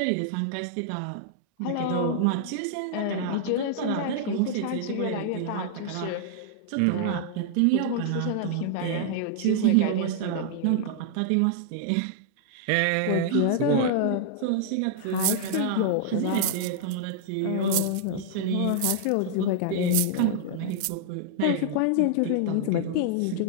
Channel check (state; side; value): different; both; correlation -0.01